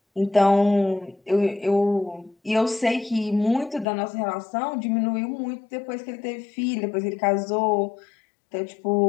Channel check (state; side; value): drops out; right; at 3.9 s